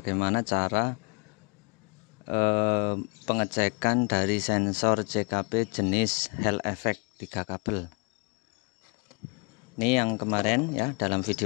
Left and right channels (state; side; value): quieter; right; 32.6 dB